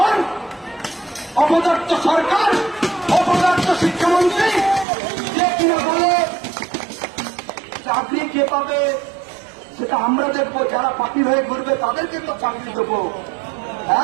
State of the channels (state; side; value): drops out; left; at 4.9 s